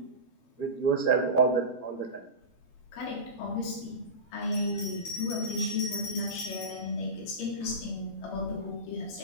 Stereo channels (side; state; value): right; late; 12 ms